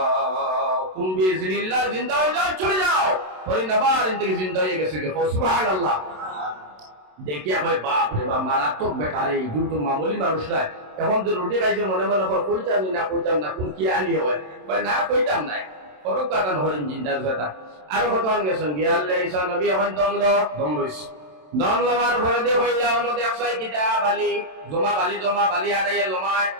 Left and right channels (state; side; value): late; left; 27 ms